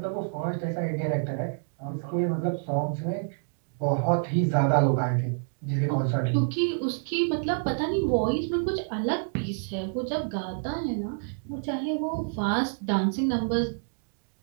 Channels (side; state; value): left; silent; digital silence